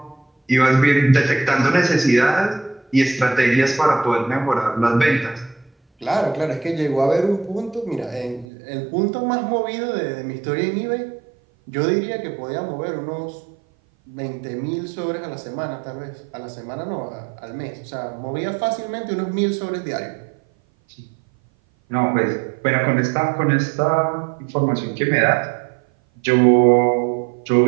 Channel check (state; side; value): drops out; left; at 8.5 s